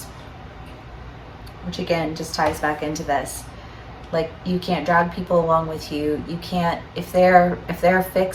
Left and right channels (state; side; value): identical; both; correlation 1.00